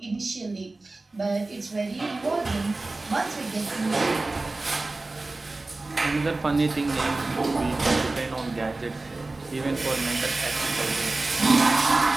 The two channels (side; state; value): left; quieter; 3.2 dB